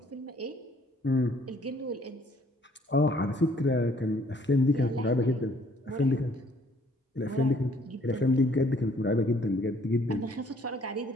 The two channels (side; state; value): both; normal; correlation 0.62